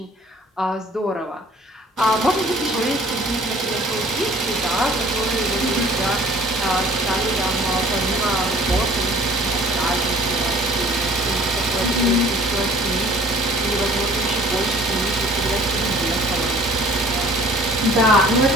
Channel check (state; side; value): normal; both; correlation 0.51